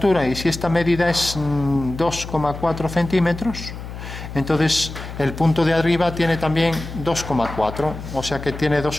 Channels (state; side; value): noise; left; hum, 10 dB below the sound